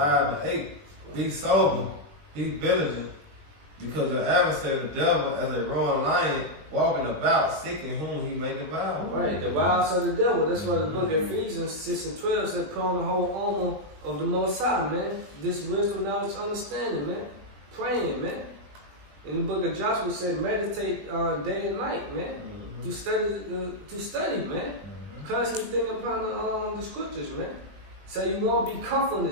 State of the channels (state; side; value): late; left; 20 ms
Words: Be sober, be vigilant, because your adversary, the devil, as a roaring lion, walking about, seeking whom he may devour. Right, the wiles of the devil. That's why the book of Ephesians 6:12 said, put on the whole armor of the Most High, man. This wisdom, knowledge, understanding, man. Praying, man. In the book of Joshua said, meditate day and night, man. To study, man. Constantly thinking upon the scriptures, man. So you won't be comfortable in